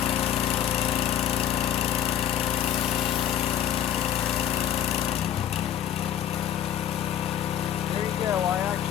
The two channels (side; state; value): right; quieter; 10.3 dB